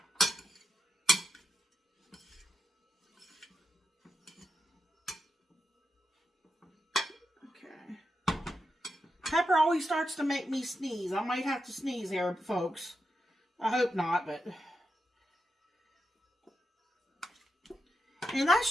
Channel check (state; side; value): normal; both; correlation 0.86